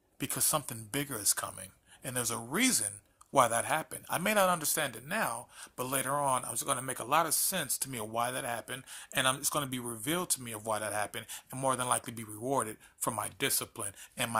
because something bigger is coming. And there's a reason why that happened. I may not understand it now, but later on, it's going to make a lot of sense to me of why that happened. And it's going to be revealed to me of why that happened and more than likely be rewarded for my discipline and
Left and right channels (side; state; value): both; identical; correlation 1.00